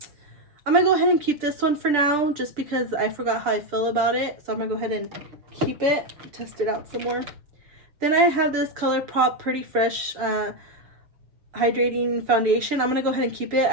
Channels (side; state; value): left; late; 6.8 ms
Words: going to go ahead and keep this one for now just because I forgot how I feel about it. So I'm going to go ahead and keep it, test it out some more. Then I have this ColourPop Pretty Fresh Hydrating Foundation. I'm going to go ahead and keep it.